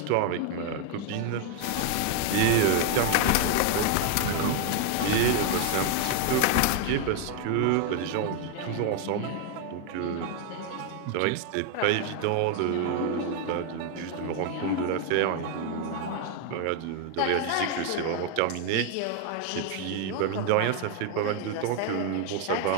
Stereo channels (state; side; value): different; both; correlation 0.01